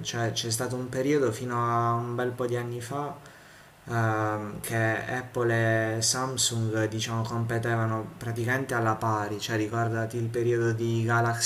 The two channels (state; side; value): identical; both; correlation 1.00